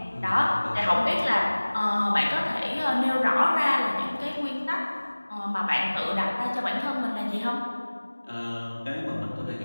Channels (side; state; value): both; inverted; correlation -1.00